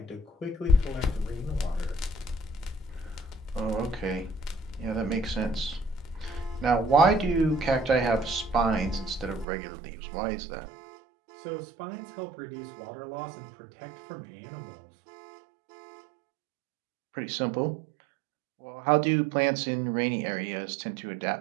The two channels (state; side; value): drops out; left; at 9.5 s